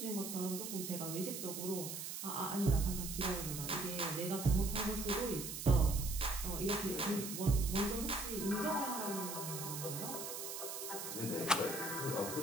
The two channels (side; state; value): right; noise; hiss, 6 dB below the sound